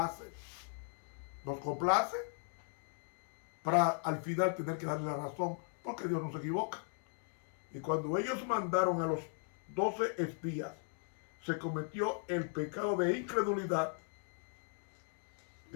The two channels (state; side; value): silent; right; 52 dB below the other